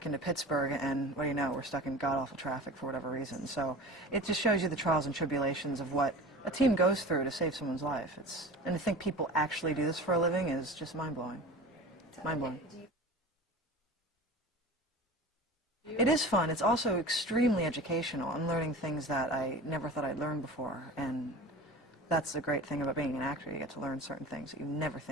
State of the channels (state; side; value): normal; both; correlation 0.36